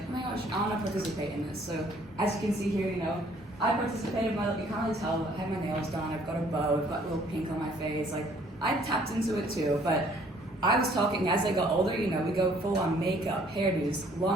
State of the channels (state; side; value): normal; both; correlation 0.60